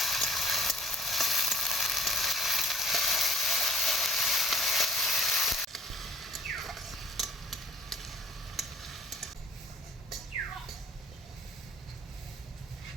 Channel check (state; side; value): normal; both; correlation 0.52